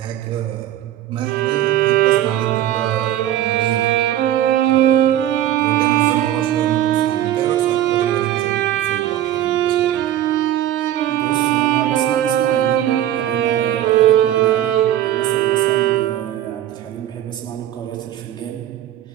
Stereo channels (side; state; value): left; quieter; 12.4 dB